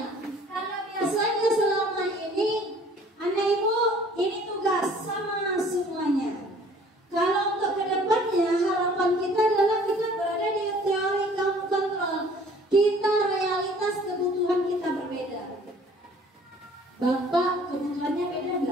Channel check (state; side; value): normal; both; correlation 0.53